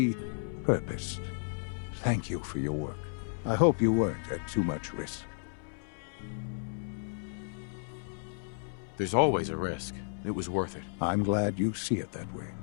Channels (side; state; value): right; silent; 56 dB below the other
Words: Thank you for your work. I hope you weren't at too much risk. There's always a risk. It was worth it. I'm glad you see it that way.